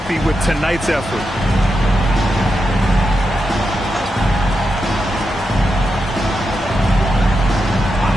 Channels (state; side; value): normal; both; correlation 0.87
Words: with tonight's effort.